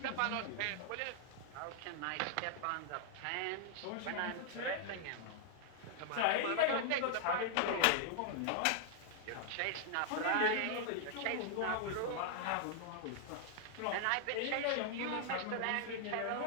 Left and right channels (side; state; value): both; different; correlation 0.00